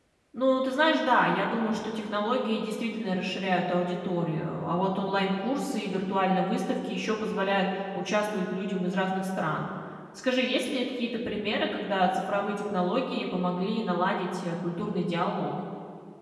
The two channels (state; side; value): identical; both; correlation 1.00